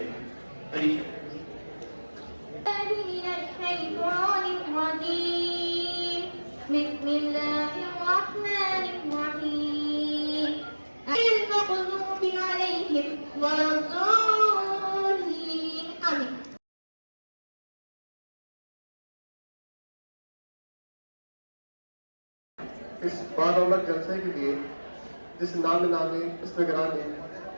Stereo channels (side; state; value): both; inverted; correlation -1.00